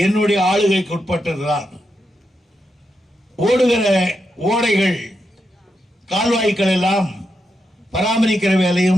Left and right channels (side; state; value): both; normal; correlation 0.85